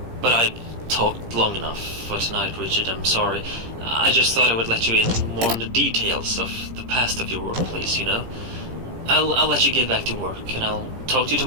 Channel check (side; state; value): left; late; 17 ms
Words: But I've talked long enough for tonight, Richard, I'm sorry. I just thought I would let you in more on the details of the past of your workplace, you know? I'll let you get back to work, and I'll talk to you